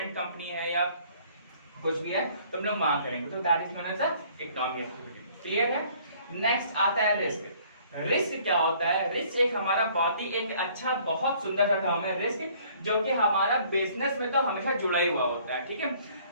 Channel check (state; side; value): inverted; both; correlation -0.58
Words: कंपनी है या कुछ भी है तो हम लोग वहां करेंगे, तो that is known as economic activity. Clear है। नेक्स्ट आता है रिस्क। रिस्क क्या होता है, रिस्क एक हमारा बहुत ही एक अच्छा, बहुत सुंदर सा टर्म है रिस्क, जो कि हमारा बिजनेस में तो हमेशा जुड़ा ही हुआ होता है। ठीक है,